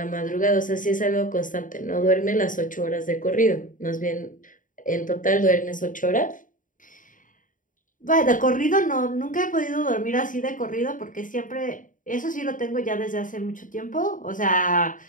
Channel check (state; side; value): late; right; 0.38 ms